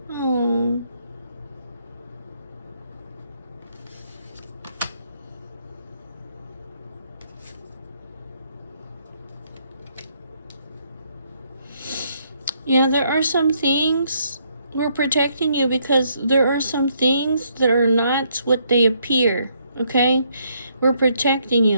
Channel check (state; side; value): inverted; both; correlation -0.72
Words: Oh. Yeah, there are some things. We're protecting you because there are some things that are not what they appear, okay? We're protecting you